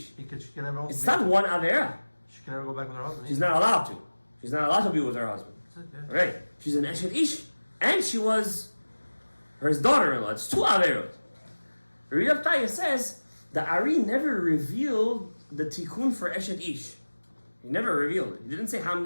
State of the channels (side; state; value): both; inverted; correlation -1.00